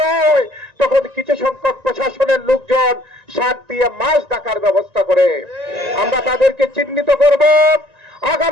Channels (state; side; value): late; left; 1.9 ms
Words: হয়, তখন কিছু সংখ্যক প্রশাসনের লোকজন সার দিয়ে মাছ ডাকার ব্যবস্থা করে। আমরা তাদেরকে চিহ্নিত করব,